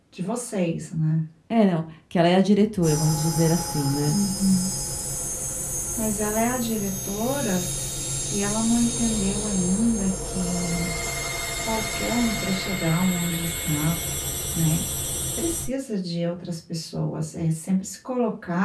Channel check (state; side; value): identical; both; correlation 1.00